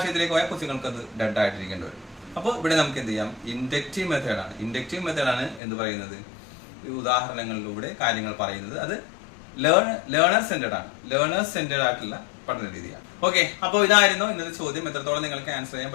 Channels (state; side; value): drops out; right; at 5.6 s